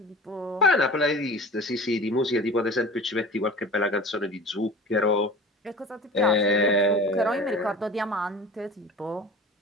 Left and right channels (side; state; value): both; normal; correlation 0.37